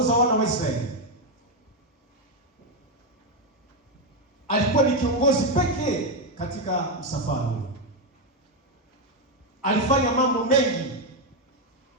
wana wa Israeli, alikuwa ni kiongozi pekee katika msafara. Alifanya mambo mengi.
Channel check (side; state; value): both; normal; correlation 0.04